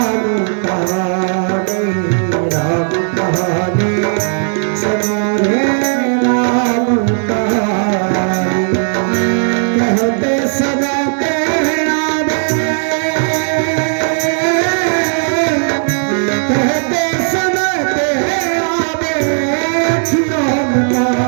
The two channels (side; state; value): left; silent; 67 dB below the other